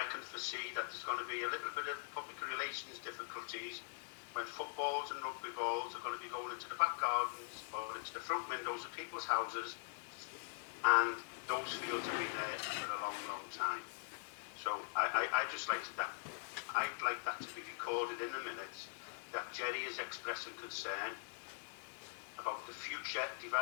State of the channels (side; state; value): right; silent; digital silence